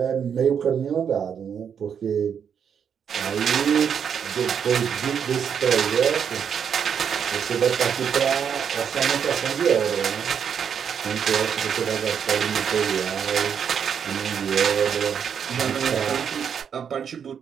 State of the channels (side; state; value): left; quieter; 7.6 dB